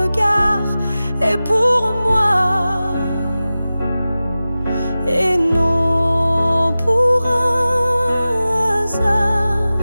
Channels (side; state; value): both; inverted; correlation -0.96